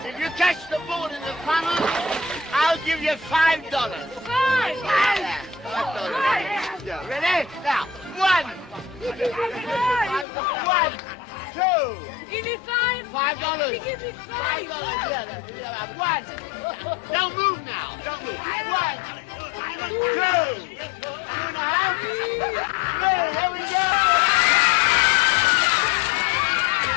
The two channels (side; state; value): right; drops out; at 10.2 s